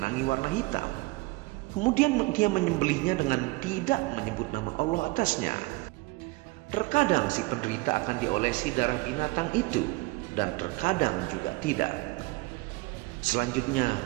warna hitam. Kemudian dia menyembelihnya dengan tidak menyebut nama Allah atasnya. Terkadang si penderita akan diolesi darah binatang itu, dan terkadang juga tidak.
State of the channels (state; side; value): quieter; left; 22.9 dB